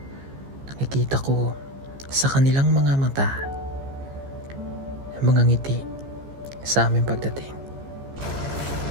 Nakikita ko sa kanilang mga mata ang mga ngiti sa aming pagdating.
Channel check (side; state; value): left; late; 15 ms